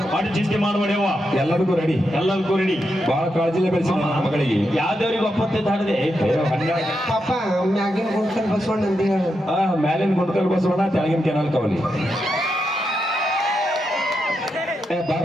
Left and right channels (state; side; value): normal; both; correlation 0.85